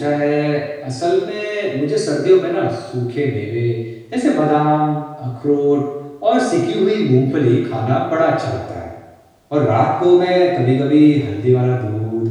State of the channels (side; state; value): both; identical; correlation 1.00